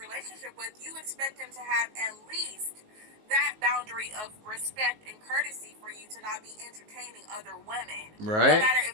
with, you expect him to have at least that boundary of respect and courtesy for you to not be entertaining other women, no Right? matter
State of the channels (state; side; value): late; left; 19 ms